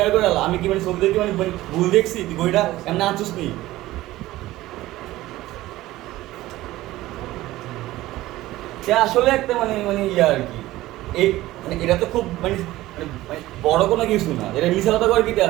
করে আমি কি মানে ছবি দেখি মানে ভুল দেখছি? তুই বইটা এমনি আনছিস নি? সে আসলে একটা মানে মানে ইয়ে আর কি এই মানে এটা তো খুব মানে মানে বড় কোনো কিছু না, এটা মিশা কথা করে কিতে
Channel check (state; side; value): quieter; left; 16.7 dB